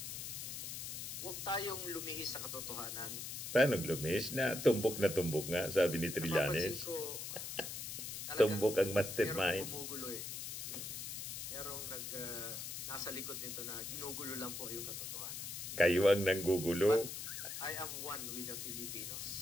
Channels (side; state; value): left; noise; hiss, 6 dB below the sound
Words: Huwag tayong lumihis sa katotohanan. Paano lumihis na? Tumbok nga, sabi ni Trillanes. Napapansin ko, Tumbok ang mastermind. Merong gumugulo eh. Merong nasa likod nito na ginugulo lang po yung katotohanan. Kayo ang nanggugulo. But I am one with the